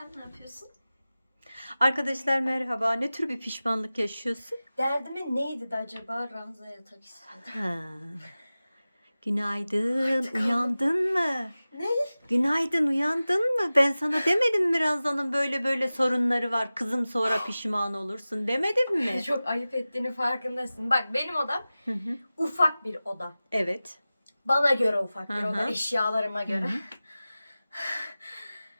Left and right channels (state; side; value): inverted; both; correlation -0.96